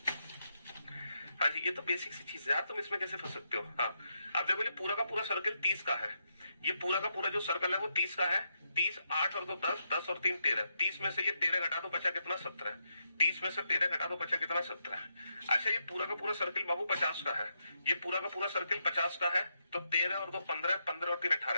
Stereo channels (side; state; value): both; inverted; correlation -0.82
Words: हाँ जी, ये तो बेसिक सी चीज है यार, तुम इसमें कैसे फंस सकते हो। हाँ, अब देखो ये पूरा का पूरा सर्कल 30 का है। ये पूरा का पूरा जो सर्कल है वो 30 का है। 30 8 और 2 10, 10 और 3 13। 30 में से ये 13 घटा दो, बचा कितना 17। 30 में से 13 घटा दो, बचा कितना 17। अच्छा, ये पूरा का पूरा सर्कल बाबू 50 का है। ये पूरा का पूरा सर्कल 50 का है। तो 13 और 2 15, 15 और 3